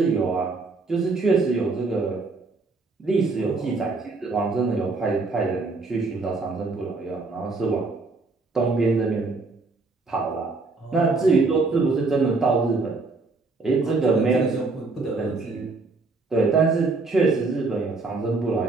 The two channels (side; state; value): left; quieter; 3.8 dB